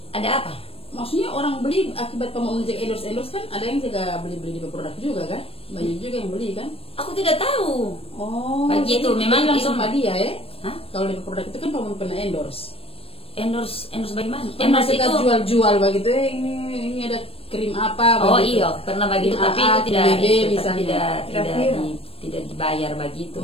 Ada apa? Maksudnya orang beli akibat mau menjaga endorse kan ada yang juga beli di produk juga kan? Banyak juga yang beli kan? Aku tidak tahu. Oh, begitu memang langsung sama dia ya? Hah? Kalau di produk itu kan kamu pernah endorse bagaimana? Endorse itu jual begitu ini ada krim apa begitu. Oh iya, pernah begitu tapi itu tidak dibayar begitu.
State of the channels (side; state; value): right; late; 0.28 ms